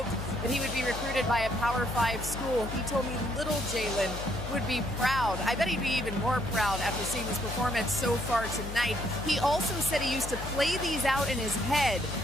that he would be recruited by a Power 5 school. He told me little Jalen would be proud. I bet he'd be even more proud after seeing this performance so far tonight. He also said he used to play these out in his head.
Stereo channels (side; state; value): left; noise; hum, 8 dB below the sound